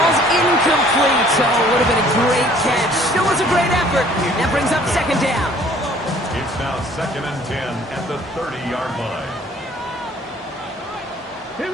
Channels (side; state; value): both; normal; correlation 0.56